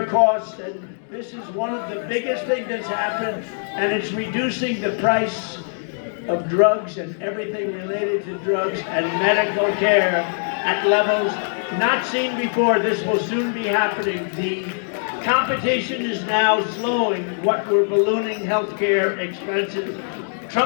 costs. And this is one of the biggest things that's happened, and it's reducing the price of drugs and everything related to drugs and medical care at levels not seen before. This will soon be happening. The competition is now slowing what were ballooning healthcare expenses.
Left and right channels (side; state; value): right; silent; digital silence